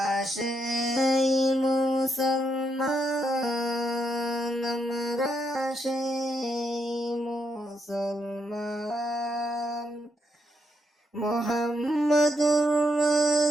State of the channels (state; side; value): normal; both; correlation 0.79